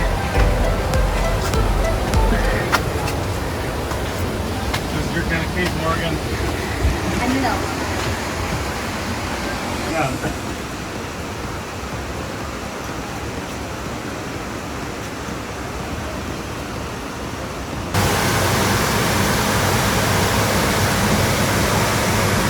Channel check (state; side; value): identical; both; correlation 1.00